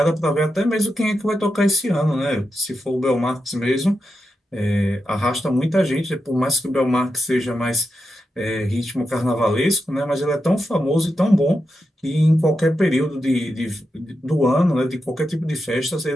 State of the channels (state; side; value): normal; both; correlation 0.87